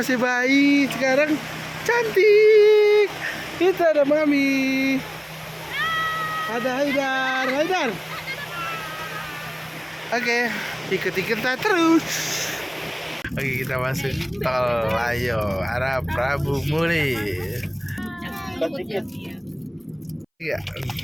bayi, sekarang cantik. Kita ada Mami, ada Haidar. Oke, ikut-ikutan terus. Oke, kita masuk tol. Ayo, arah Prabu Muli. Iya.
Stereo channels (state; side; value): identical; both; correlation 1.00